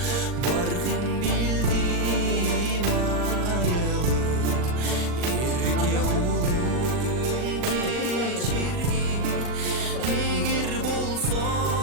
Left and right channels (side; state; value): left; late; 39 ms